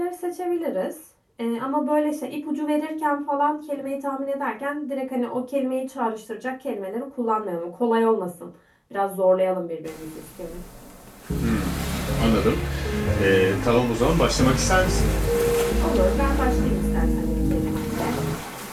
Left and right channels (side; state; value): both; identical; correlation 1.00